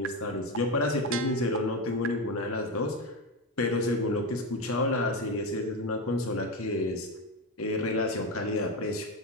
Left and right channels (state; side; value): normal; both; correlation 0.14